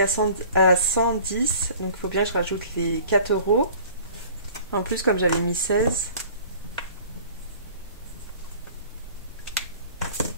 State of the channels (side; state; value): both; inverted; correlation -0.47